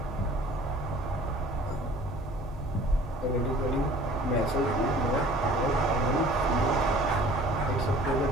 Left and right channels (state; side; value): normal; both; correlation 0.49